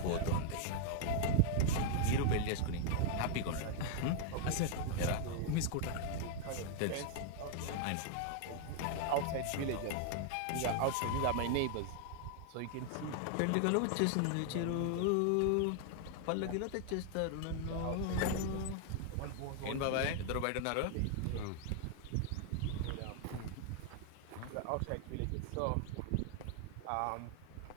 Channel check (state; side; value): different; both; correlation 0.00